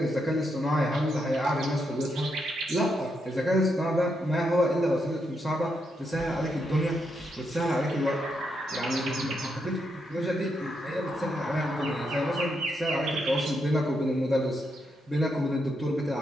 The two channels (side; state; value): both; normal; correlation 0.81